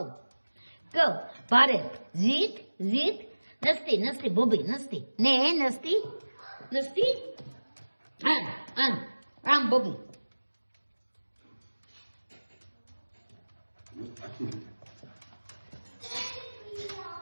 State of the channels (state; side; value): inverted; both; correlation -1.00